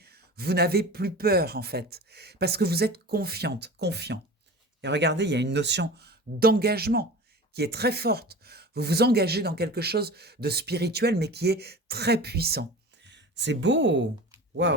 Vous n'avez plus peur, en fait, parce que vous êtes confiante, confiant. Et regardez, il y a une notion d'engagement qui est très forte. Vous vous engagez dans quelque chose de spirituel, mais qui est très puissant. C'est beau.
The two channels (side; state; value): both; normal; correlation 0.35